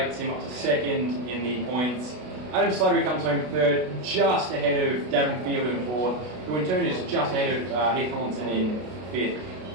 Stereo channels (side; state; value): left; late; 32 ms